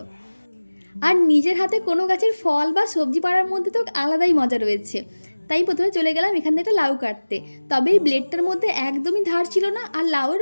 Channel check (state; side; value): inverted; both; correlation -1.00